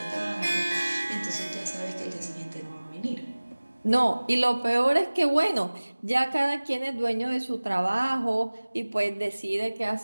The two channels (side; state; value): both; inverted; correlation -1.00